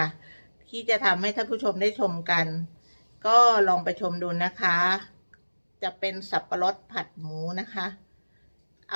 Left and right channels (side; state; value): both; inverted; correlation -1.00